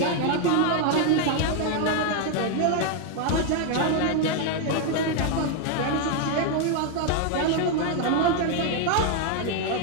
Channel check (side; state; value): both; different; correlation 0.01